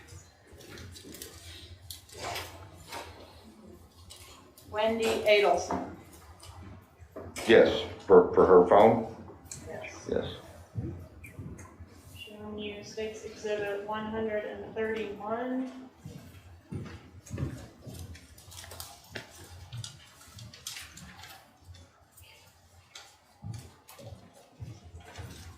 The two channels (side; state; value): both; identical; correlation 1.00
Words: Wendi Adelson? Yes, for her phone? Yes. Yes. Showing you State's Exhibit 131.